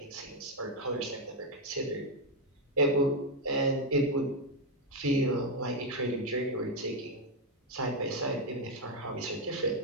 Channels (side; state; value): both; normal; correlation 0.04